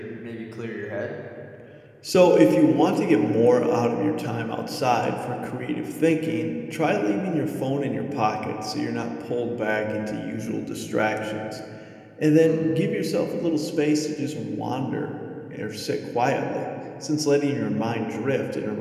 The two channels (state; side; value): identical; both; correlation 1.00